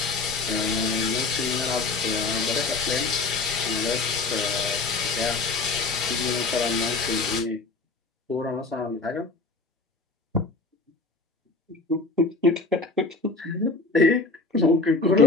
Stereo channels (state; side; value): quieter; right; 3.7 dB